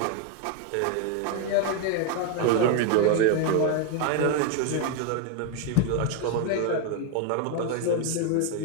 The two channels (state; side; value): different; both; correlation 0.01